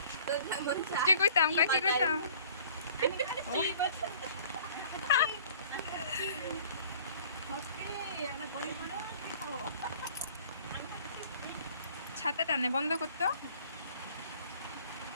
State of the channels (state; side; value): inverted; both; correlation -0.51